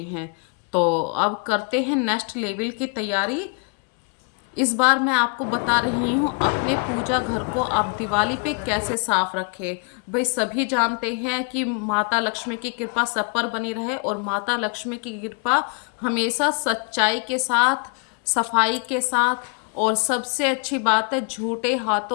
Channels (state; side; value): quieter; right; 33.9 dB